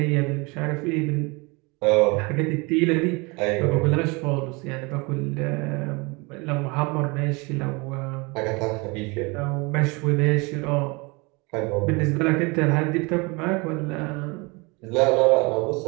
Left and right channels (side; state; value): left; quieter; 27.4 dB